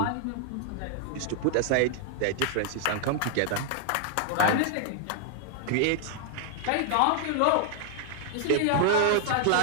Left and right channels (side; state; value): both; different; correlation 0.00